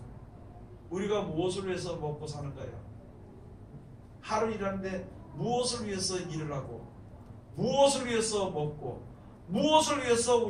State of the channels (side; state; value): both; identical; correlation 1.00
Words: 우리가 무엇을 위해서 먹고 사는가요? 하루 일하는데 무엇을 위해서 일을 하고, 무엇을 위해서 먹고, 무엇을 위해서